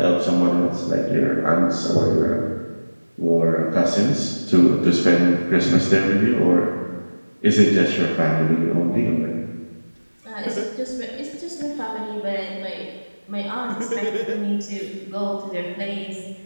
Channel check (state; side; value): inverted; both; correlation -1.00